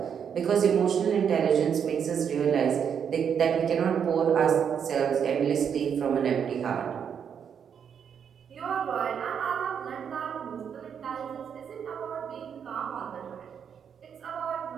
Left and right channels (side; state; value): left; quieter; 7.7 dB